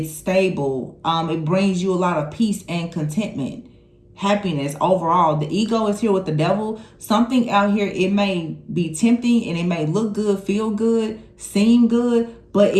stable. It brings you a lot of peace and contentment, happiness overall. The ego is here with the devil. Something out here, it may be tempting and it may look good, feel good, seem good, but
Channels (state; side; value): identical; both; correlation 1.00